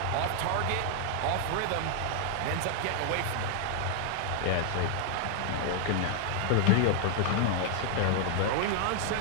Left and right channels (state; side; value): different; both; correlation -0.01